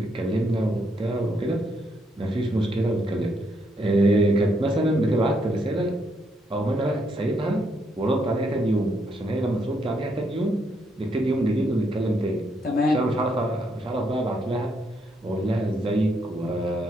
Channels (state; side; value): normal; both; correlation 0.75